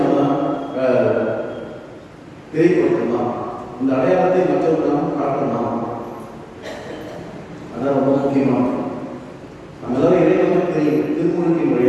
தெரியப்படுத்தலாம், இந்த அடையாளத்தை மற்றவர்கள் நாம் காட்டலாம். அதான் ரொம்ப முக்கியமானது. நம்ம எல்லாரும் இறைவனுக்கு தெரியும், திருமுழுக்கின்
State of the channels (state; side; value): identical; both; correlation 1.00